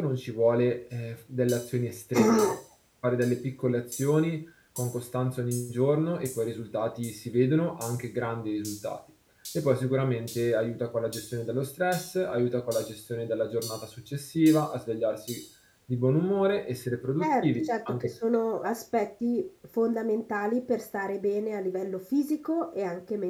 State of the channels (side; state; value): both; identical; correlation 1.00